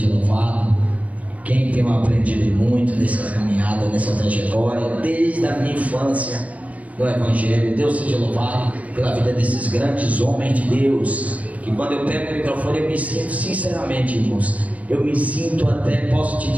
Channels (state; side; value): late; left; 0.068 ms